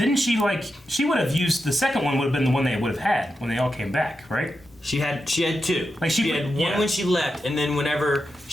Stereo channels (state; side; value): normal; both; correlation 0.88